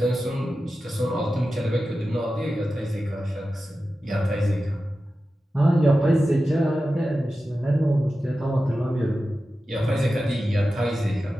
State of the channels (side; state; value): both; normal; correlation 0.93